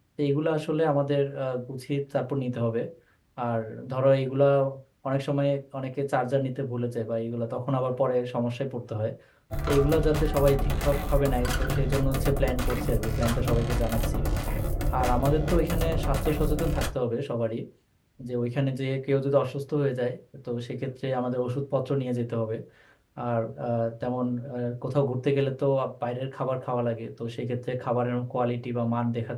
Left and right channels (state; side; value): identical; both; correlation 1.00